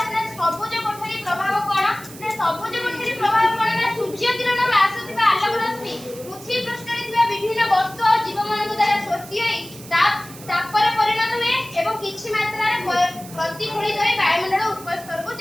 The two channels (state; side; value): noise; right; hiss, 17 dB below the sound